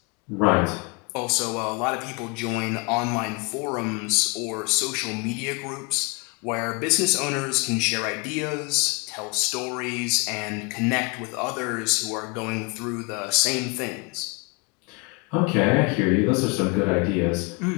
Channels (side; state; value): right; quieter; 30.6 dB